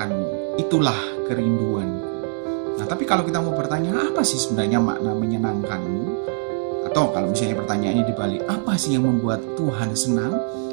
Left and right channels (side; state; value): left; silent; 64 dB below the other